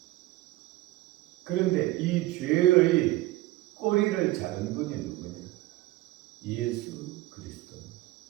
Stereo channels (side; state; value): left; quieter; 17.9 dB